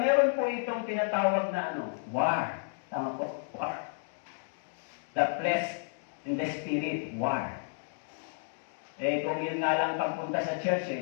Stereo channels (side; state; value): right; silent; digital silence